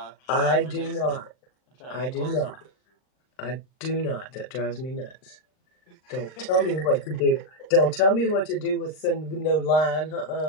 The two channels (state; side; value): late; right; 39 ms